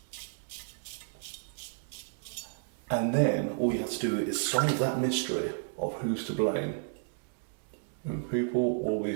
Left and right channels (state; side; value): silent; left; digital silence